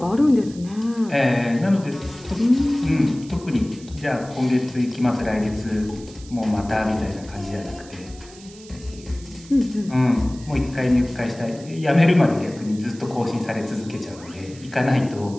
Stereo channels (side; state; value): right; noise; hiss, 21 dB below the sound